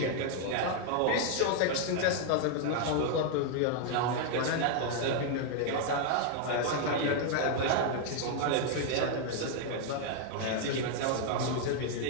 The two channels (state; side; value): different; both; correlation 0.00